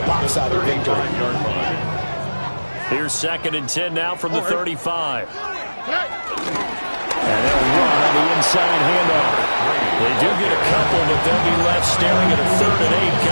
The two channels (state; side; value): inverted; both; correlation -1.00